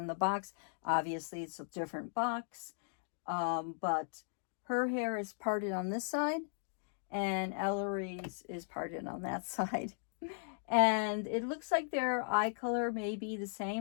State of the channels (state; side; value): silent; right; digital silence